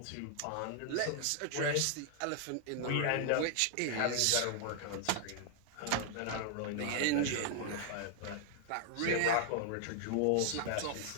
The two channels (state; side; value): different; both; correlation 0.00